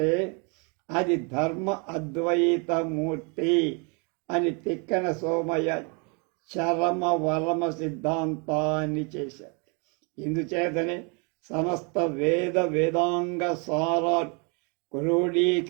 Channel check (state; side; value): quieter; left; 33.8 dB